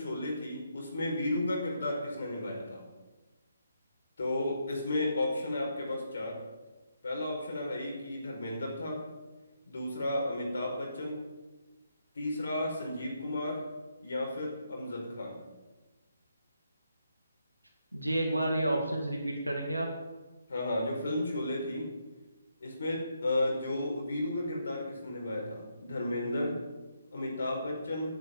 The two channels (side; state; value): both; inverted; correlation -0.79